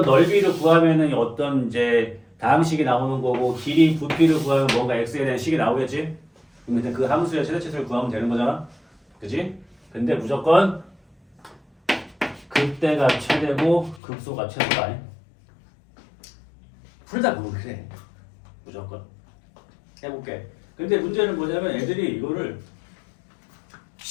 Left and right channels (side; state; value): right; drops out; at 14.0 s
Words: 넓이를 구하면은 어떤 이제 다항식이 나오는 거고 길이 부피를 구하면 뭔가 x에 대한 식이 나오겠지? 그럼 그 함수의 최대치수를 구하면 되는 거잖아. 그지? 근데 무조건 극대가 최대고 극소가 최소다. 풀다 보면 그래. 무조건. 해볼게. 근데 문제는 뭐냐면 애들이 이거를